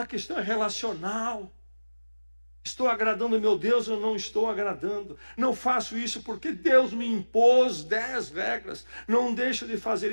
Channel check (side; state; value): both; inverted; correlation -1.00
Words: questão é relacional. Estou agradando meu Deus ou não estou agradando? Não faço isso porque Deus me impôs 10 regras. Não deixo de fazer